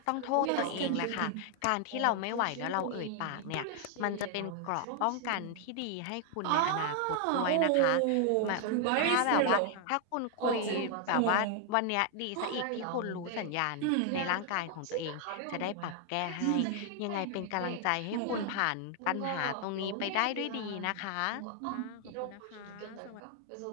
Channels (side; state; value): both; different; correlation 0.00